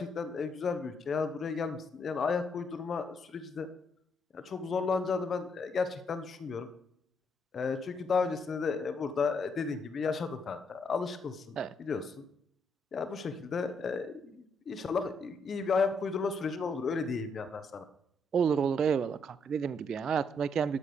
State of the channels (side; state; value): both; normal; correlation 0.74